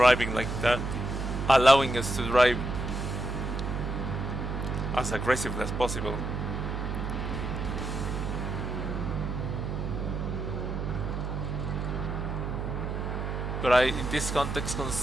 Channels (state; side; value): noise; right; hum, 3 dB below the sound